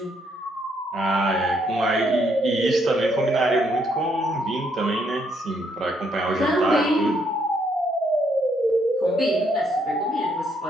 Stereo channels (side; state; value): both; normal; correlation 0.72